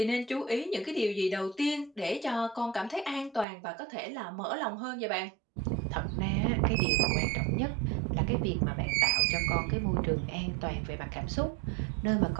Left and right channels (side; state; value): left; drops out; at 3.5 s